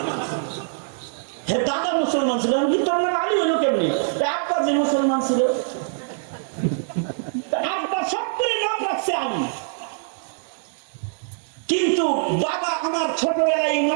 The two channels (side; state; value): left; silent; digital silence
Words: হ্যাঁ, দাদা মুসলমান ছিল, কিন্তু আমার আলী হইল কেমনি? আব্বা যে মুসলমান ছিল, আব্বা সব করে নাম রাখছে আলী, কিন্তু বাবা আমার ছোটবেলায়